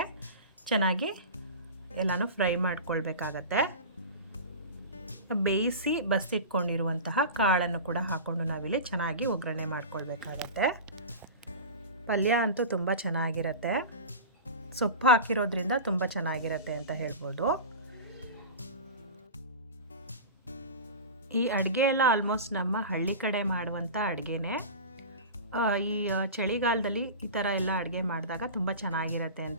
ಚೆನ್ನಾಗಿ ಎಲ್ಲನೂ ಫ್ರೈ ಮಾಡ್ಕೊಳ್ಬೇಕಾಗತ್ತೆ. ಬೇಯಿಸಿ ಬಸಿಟ್ಕೊಂಡಿರುವಂತಹ ಕಾಳನ್ನು ಕೂಡ ಹಾಕ್ಕೊಂಡು ನಾವಿಲ್ಲಿ ಚೆನ್ನಾಗಿ ಒಗ್ಗರಣೆ ಮಾಡ್ಕೊಳ್ಬೇಕಾಗತ್ತೆ. ಪಲ್ಯ ಅಂತೂ ತುಂಬ ಚೆನ್ನಾಗಿರುತ್ತೆ. ಸೊಪ್ಪು ಹಾಕಿರೋದ್ರಿಂದ ತುಂಬ ಚೆನ್ನಾಗಿರುತ್ತೆ ಅಂತ ಹೇಳ್ಬೋದು. ಈ ಅಡುಗೆ ಎಲ್ಲ ಆಲ್ಮೋಸ್ಟ್ ನಮ್ಮ ಹಳ್ಳಿ ಕಡೆ ಮಾಡುವಂಥ ಅಡುಗೆನೇ. ಈ ಚಳಿಗಾಲದಲ್ಲಿ ಈ ಥರ ಎಲ್ಲ ಅಡುಗೆ ಮಾಡಿದಾಗ ತುಂಬ ಚೆನ್ನಾಗಿರುತ್ತೆ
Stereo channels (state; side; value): inverted; both; correlation -0.30